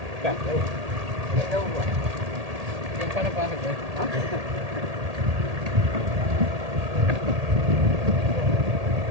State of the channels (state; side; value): late; left; 1.8 ms